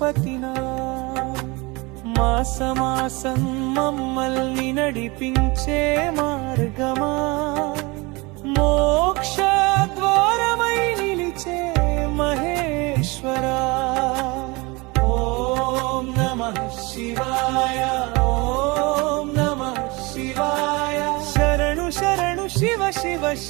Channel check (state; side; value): quieter; left; 25.5 dB